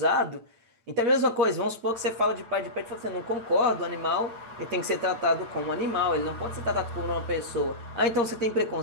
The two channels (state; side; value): late; left; 8.9 ms